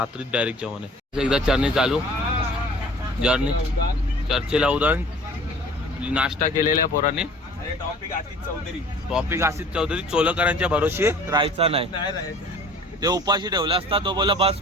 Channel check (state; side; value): normal; both; correlation 0.48